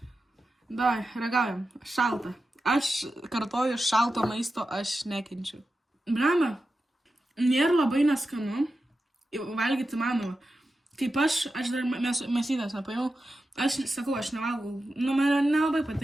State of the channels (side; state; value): both; normal; correlation 0.91